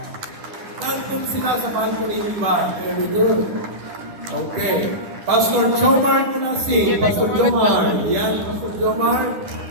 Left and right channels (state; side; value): late; left; 10 ms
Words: Nandun sila sa balcony iba. Very good. Okay. Pastor Jomar Kunasi. Pastor Jomar. Yan, Pastor Jomar.